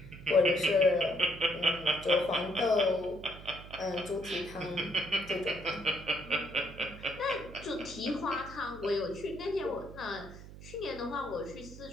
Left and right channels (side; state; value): right; noise; hum, 15 dB below the sound